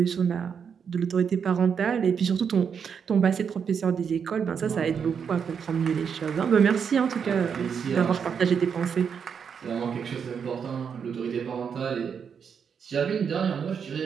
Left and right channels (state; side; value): quieter; left; 6.9 dB